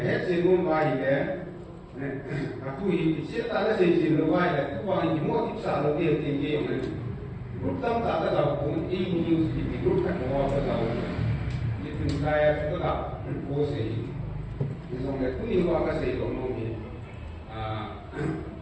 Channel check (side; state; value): both; identical; correlation 1.00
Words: hết chuyện nó mai đấy aku ini cerita ada sejauh luar itu orang ini mau tipsa lagi yang tinggi yang mana grup tam tak ada tahu pun ini news di grup kan mau apa tahu itu saya sudah tak posisi misalnya itu ini apa sih ekonomi